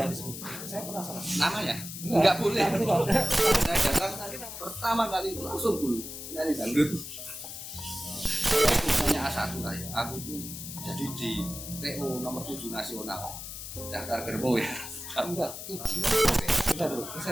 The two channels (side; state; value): left; noise; hiss, 9 dB below the sound